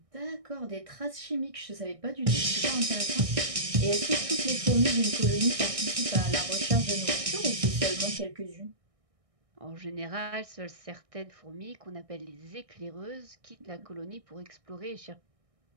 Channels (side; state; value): left; late; 1.6 ms